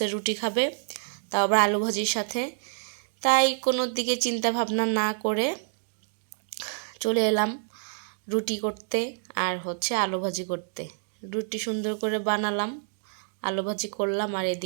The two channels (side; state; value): left; silent; digital silence